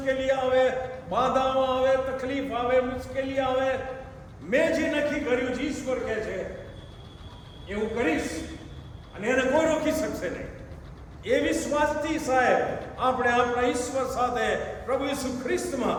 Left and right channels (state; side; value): identical; both; correlation 1.00